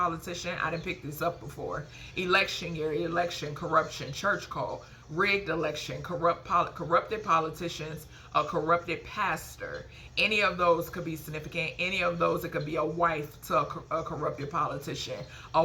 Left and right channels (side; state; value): both; identical; correlation 1.00